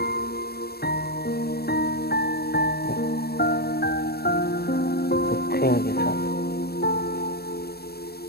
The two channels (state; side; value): late; right; 0.46 ms